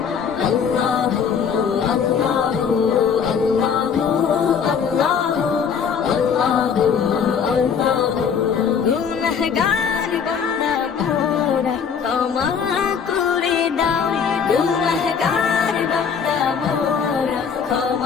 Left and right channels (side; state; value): right; quieter; 6.8 dB